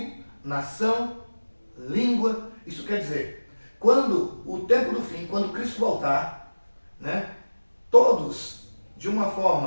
nação, língua. Isso quer dizer, quando o tempo do fim, quando Cristo voltar, né, todos, de uma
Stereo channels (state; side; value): inverted; both; correlation -1.00